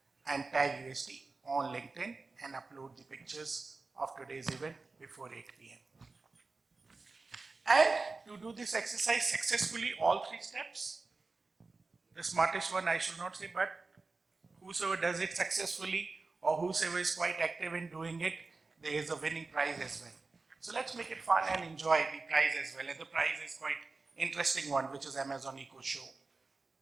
and tag UST on LinkedIn and upload the pictures of today's event before 8 p.m. And to do this exercise successfully, all 3 steps, the smartest one I should not say, but whosoever does it successfully or whosoever is quite active in doing it, there is a winning prize as well. So let's make it fun and enjoy the prize as well. And the prize is quite interesting one, which is Amazon Echo Show.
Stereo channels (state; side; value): quieter; left; 3.8 dB